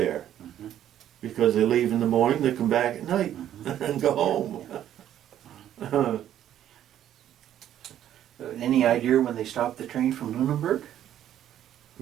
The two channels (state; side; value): quieter; left; 11.2 dB